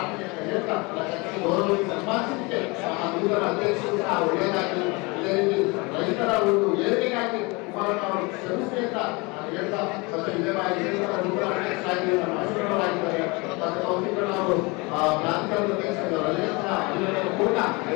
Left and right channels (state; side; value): quieter; right; 26.7 dB